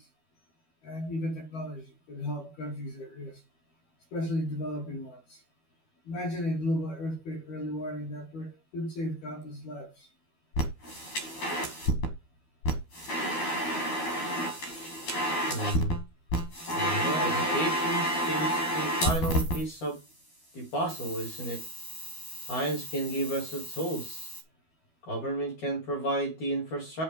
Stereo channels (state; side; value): late; right; 12 ms